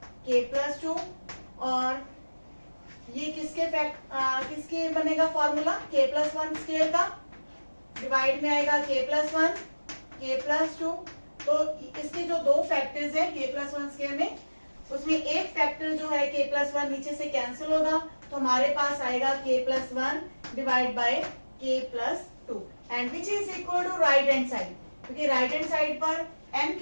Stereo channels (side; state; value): both; inverted; correlation -1.00